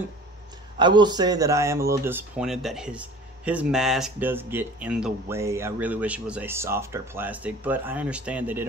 will say that I am a little disappointed that his mask does get in the way. I really wish it was a softer plastic, but I understand they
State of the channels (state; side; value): normal; both; correlation 0.44